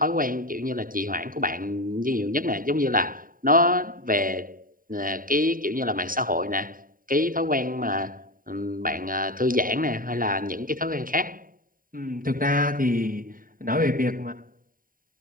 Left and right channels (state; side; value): late; left; 0.41 ms